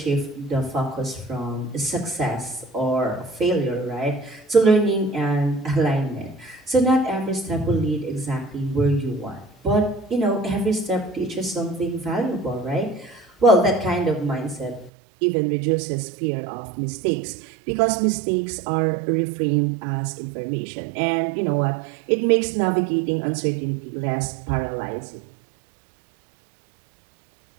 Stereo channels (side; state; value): left; drops out; at 14.9 s